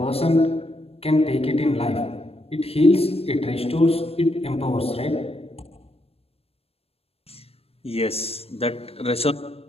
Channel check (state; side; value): late; right; 0.28 ms